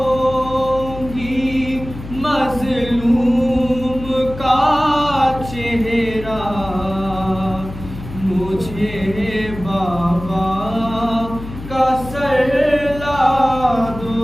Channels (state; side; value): noise; left; hum, 12 dB below the sound